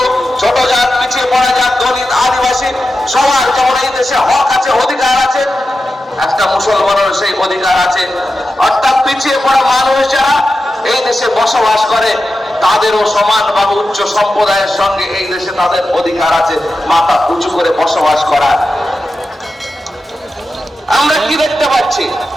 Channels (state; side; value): normal; both; correlation 0.91